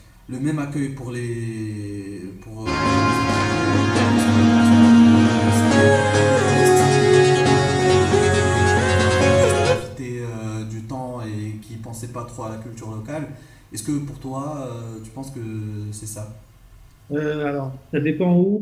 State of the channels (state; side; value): identical; both; correlation 1.00